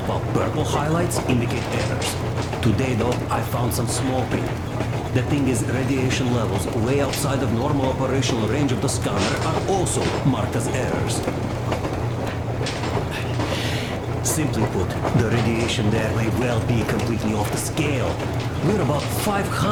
while purple highlights indicate errors. Today, though, I found some small print. The thing is, radiation levels way outside of normal operational range of the scanner are also marked as errors. Simply put, the radiation there may well be completely off the scale. We're about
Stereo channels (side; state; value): both; identical; correlation 1.00